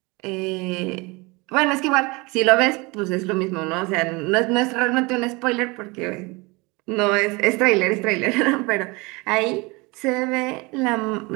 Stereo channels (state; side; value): quieter; left; 25.8 dB